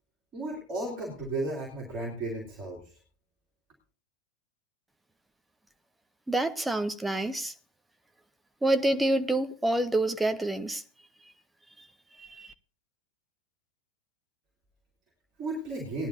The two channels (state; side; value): normal; both; correlation 0.79